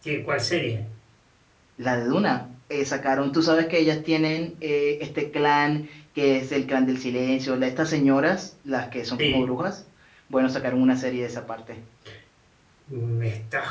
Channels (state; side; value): identical; both; correlation 1.00